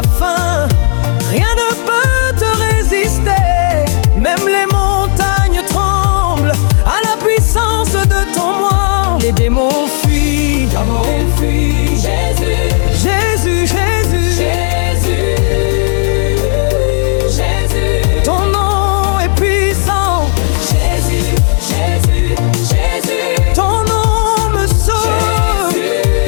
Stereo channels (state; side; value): silent; right; 57 dB below the other